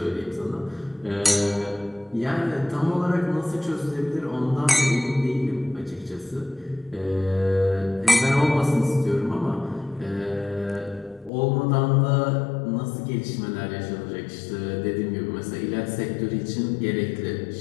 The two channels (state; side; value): drops out; right; at 11.3 s